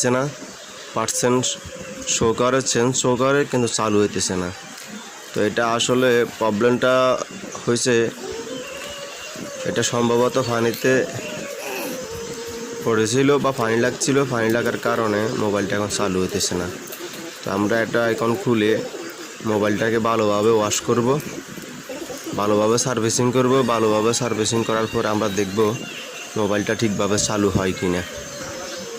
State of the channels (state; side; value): identical; both; correlation 1.00